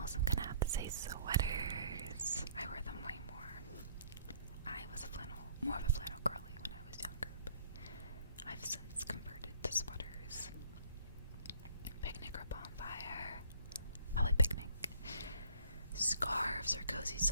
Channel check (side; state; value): both; inverted; correlation -0.56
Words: I'm gonna have to say sweaters. I wear them way more. I was more of a flannel girly when I was younger, but I've since converted to sweaters. Picnic or bonfire? Probably picnic. Scarves or cozy